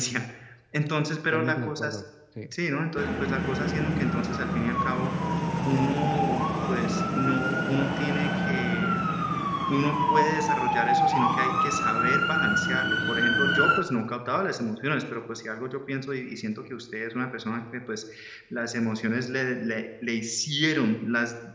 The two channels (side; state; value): both; identical; correlation 1.00